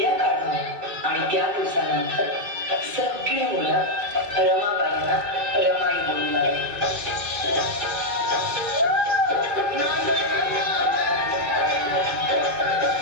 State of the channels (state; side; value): late; left; 2.3 ms